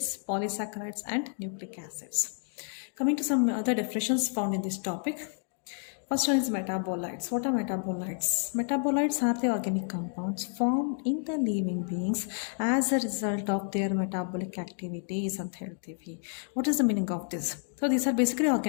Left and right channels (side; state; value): right; silent; 58 dB below the other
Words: polysaccharides, and nucleic acids. Coming to some other definitions found in this topic. First one is metabolites. What are metabolites? Metabolites are the organic compounds formed in the living beings as a result of their metabolic activities and healthy. What is the meaning of this? So these are basically